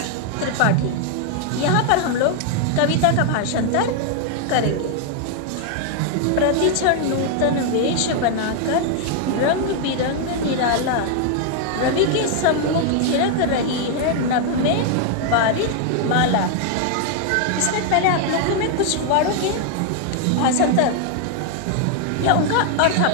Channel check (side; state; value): both; different; correlation 0.00